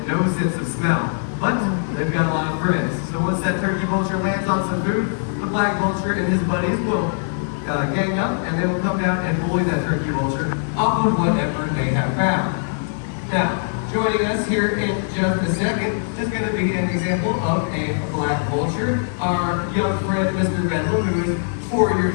no sense of smell. But they've got a lot of friends. So once that turkey vulture lands on some food, the black vulture and his buddies will gang up and they will come down and bully that turkey vulture off of whatever they have found. Now, joining us here in just a second is going to be an example of a black vulture. Our young friend, Mr. Bedlam, who is 4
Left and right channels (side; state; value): right; silent; 60 dB below the other